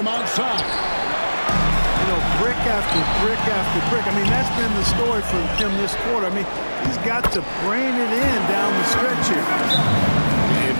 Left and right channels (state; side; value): inverted; both; correlation -1.00